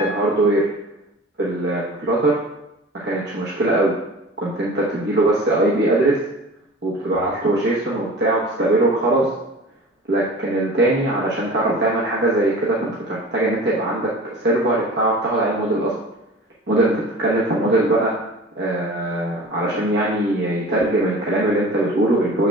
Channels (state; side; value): normal; both; correlation 0.39